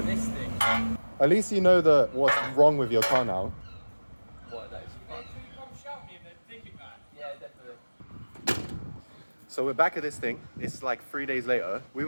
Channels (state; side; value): inverted; both; correlation -1.00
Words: This thing. At least you know what's wrong with your car now. What, that is fun. Yeah, definitely. So we're back at this thing. It's like 3 days later. We